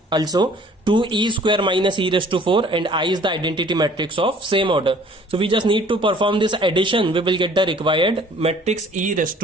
also 2 e square minus e raised to 4, and I is the identity matrix of same order. So we just need to perform this addition, we will get the required matrix e raised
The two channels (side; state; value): both; normal; correlation 0.54